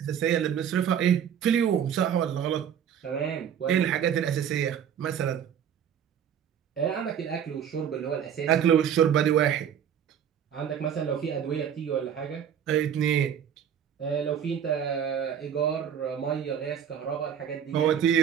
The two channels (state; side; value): quieter; left; 8.8 dB